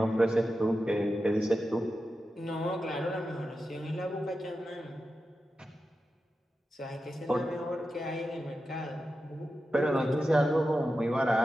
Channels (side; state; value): both; normal; correlation 0.91